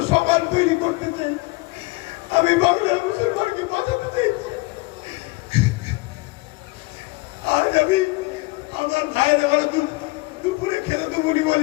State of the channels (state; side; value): quieter; right; 24.4 dB